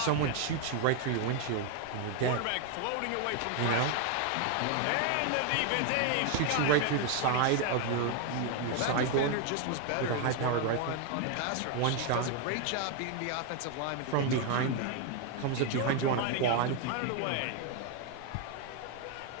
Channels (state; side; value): different; both; correlation 0.01